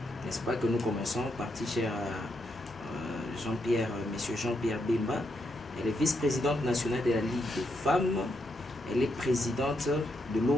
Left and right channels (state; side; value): normal; both; correlation 0.80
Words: n'est-ce pas, que nous commençons, parti cher à Monsieur Jean-Pierre Bemba. Elle est vice-présidente nationale de la Ligue des femmes. Elle est présidente de